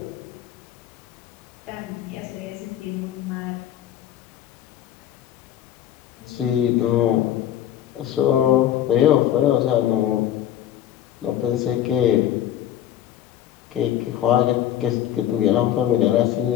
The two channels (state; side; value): quieter; right; 11.4 dB